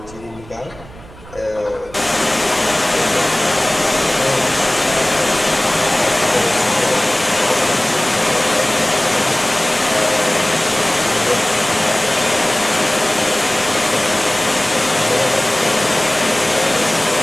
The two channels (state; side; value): noise; right; rumble, 20 dB below the sound